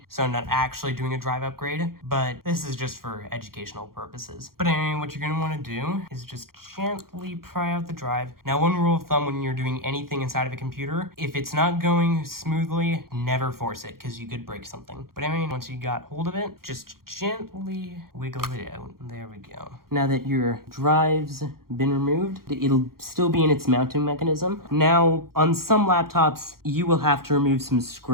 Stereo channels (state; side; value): late; left; 0.93 ms